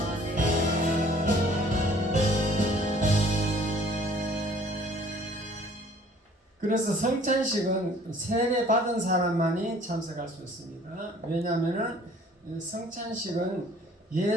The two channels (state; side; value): normal; both; correlation 0.55